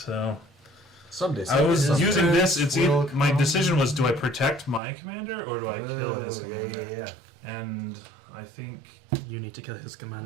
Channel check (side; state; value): left; drops out; at 4.8 s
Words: So Someday. I was someday. using this. It's will my come. decision was: do I protect my commander or do I kill his commander? Yeah. And I think You need to kill his